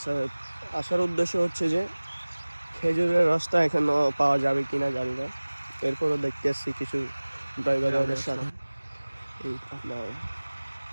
আসার উদ্দেশ্য হচ্ছে যে খেজুরের রসটা এখনো পাওয়া যাবে কিনা জানি না। এরপরও দেখতে আসছি কিছু ড্রাইভারদের সাথে, এই আপনার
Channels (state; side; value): inverted; both; correlation -1.00